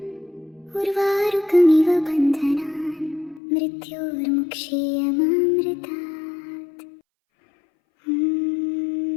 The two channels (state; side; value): drops out; right; at 3.4 s